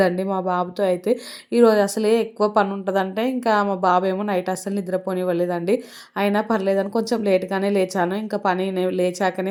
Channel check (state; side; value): identical; both; correlation 1.00